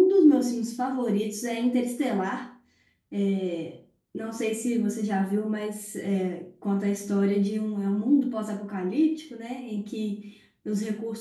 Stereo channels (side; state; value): both; identical; correlation 1.00